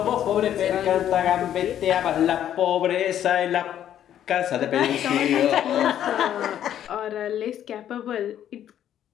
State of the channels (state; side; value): quieter; right; 10.7 dB